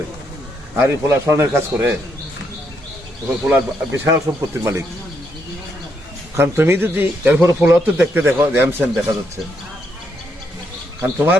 আর এই পোলা স্বর্ণের কাজ করে, পোলার বিশাল সম্পত্তির মালিক। কারণ তুমি যদি এরপরে পোলাও তো দেখতে দেখো, র্যামসেন দেখা যাচ্ছে, কারণ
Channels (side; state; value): both; normal; correlation 0.77